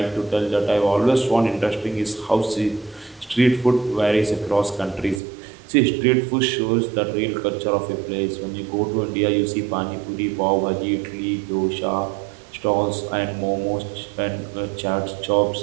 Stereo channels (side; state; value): left; drops out; at 5.2 s